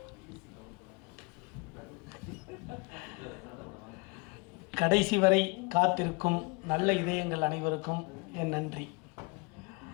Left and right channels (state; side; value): quieter; right; 29.0 dB